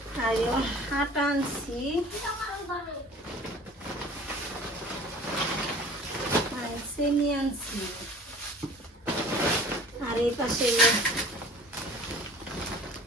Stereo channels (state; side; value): normal; both; correlation 0.45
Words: আর হাট আনছি, চিনি আনছি, এই পাশে